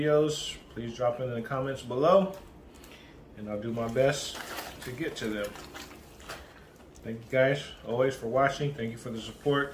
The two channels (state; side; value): identical; both; correlation 1.00